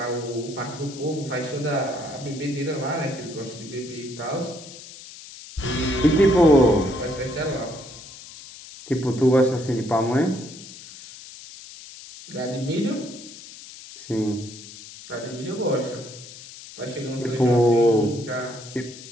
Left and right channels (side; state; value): left; noise; hiss, 16 dB below the sound